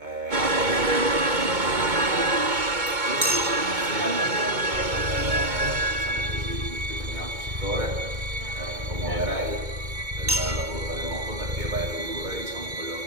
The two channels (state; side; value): late; left; 2.2 ms